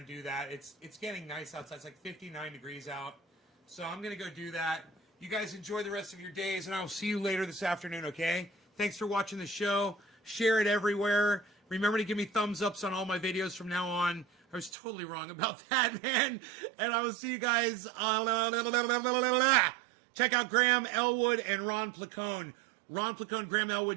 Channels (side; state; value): left; drops out; at 14.7 s